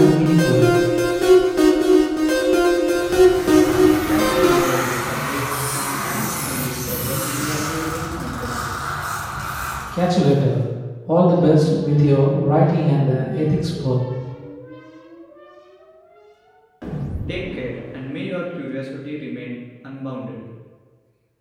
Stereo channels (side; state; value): both; identical; correlation 1.00